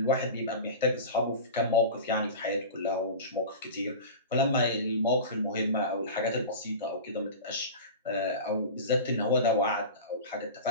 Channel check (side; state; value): both; inverted; correlation -0.30